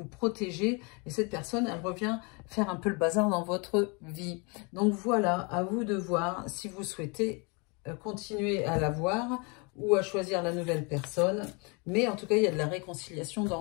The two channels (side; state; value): right; quieter; 31.5 dB